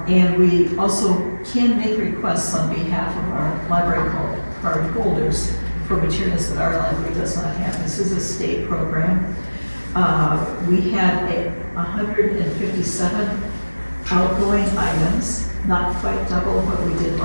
And we also can make requests on behalf of our library card holders for materials that our library does not have. This is a state program. We had 157 outgoing items, not quite double what we did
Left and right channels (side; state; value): both; inverted; correlation -1.00